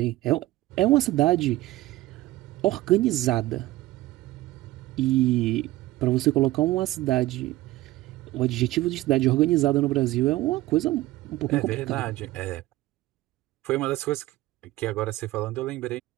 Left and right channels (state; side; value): quieter; left; 17.2 dB